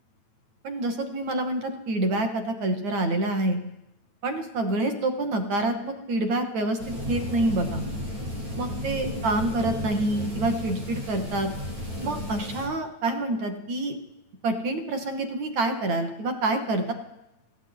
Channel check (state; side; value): late; left; 9.0 ms